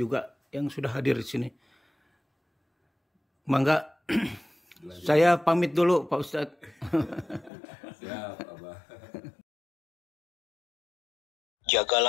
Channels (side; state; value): right; drops out; at 7.5 s